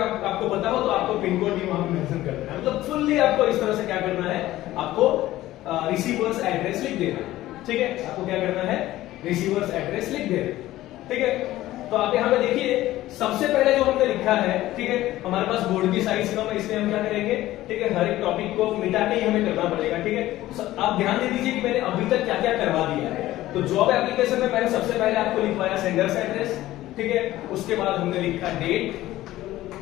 आपको पता हो तो आपको पिन कोड भी वहां पे मेंशन कर देना है। मतलब फुल्ली आपको इस तरह से क्या करना है, आपको रिसीवर्स एड्रेस लिख देना है। ठीक है, आपको क्या करना है, रिसीवर्स एड्रेस लिख देना। ठीक है, तो आप यहाँ पे देखिए सबसे पहले जो हमने लिखा है। ठीक है, हमारे पास बोर्ड की साइज कम है, इसलिए हम क्या करेंगे, ठीक है, हर एक टॉपिक को मिटा के ही हमें करना पड़ेगा। ठीक है, आप ध्यान दे दीजिए कि मैंने अभी तक क्या क्या करवा दिया है। तो जॉब एप्लीकेशन में मैंने सबसे पहले आपको लिखवाया सेंडर्स एड्रेस। ठीक है, उसके बाद हमने लिखा डेट।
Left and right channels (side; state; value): right; quieter; 15.6 dB